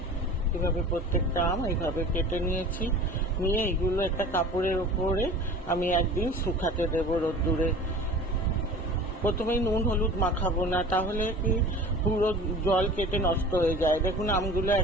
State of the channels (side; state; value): both; normal; correlation 0.41